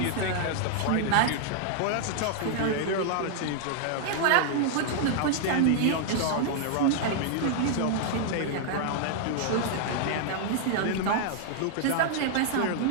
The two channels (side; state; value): both; different; correlation -0.01